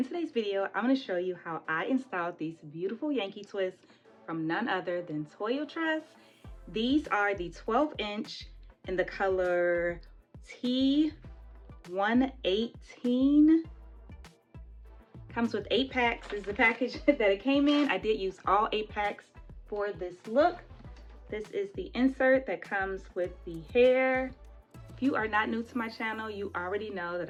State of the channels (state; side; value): identical; both; correlation 1.00